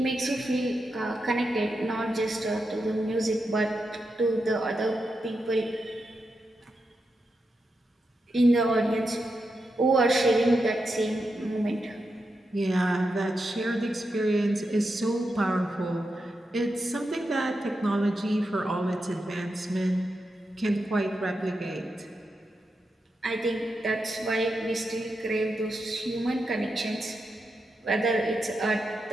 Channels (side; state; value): both; normal; correlation 0.87